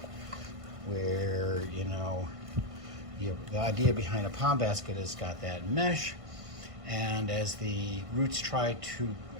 where, you know, the idea behind a pond basket is got that mesh, and as the roots try to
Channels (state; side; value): late; left; 1.5 ms